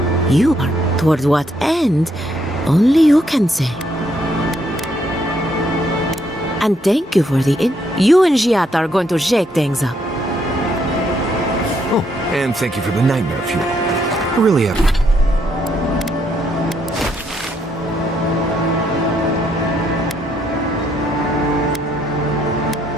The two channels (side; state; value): both; normal; correlation 0.73